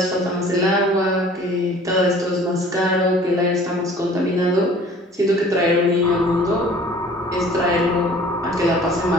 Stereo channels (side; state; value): both; normal; correlation 0.49